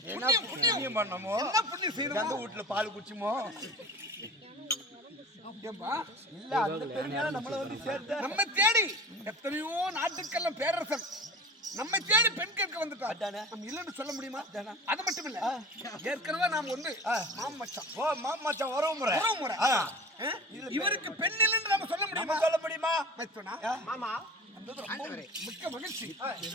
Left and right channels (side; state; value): both; normal; correlation 0.37